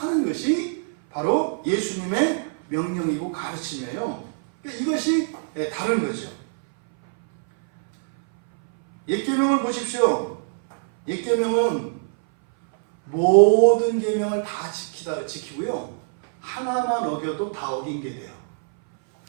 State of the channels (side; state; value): left; silent; 60 dB below the other